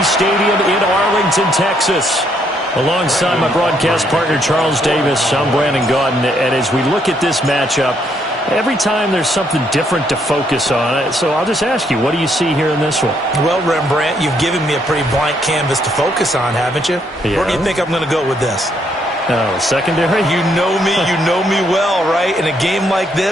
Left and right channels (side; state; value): both; normal; correlation 0.72